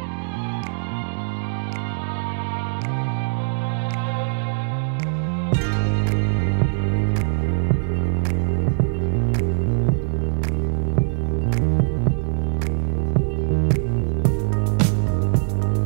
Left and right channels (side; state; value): left; silent; 64 dB below the other